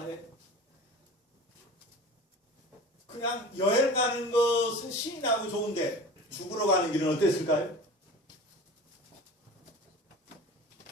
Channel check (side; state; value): both; normal; correlation 0.37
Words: 그냥 여행 가는 것은 신이 나고 좋은데 죽으러 가는 길은 어땠을까요?